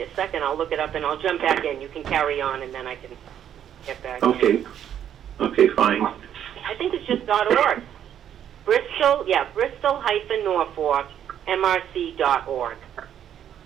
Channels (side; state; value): left; quieter; 9.9 dB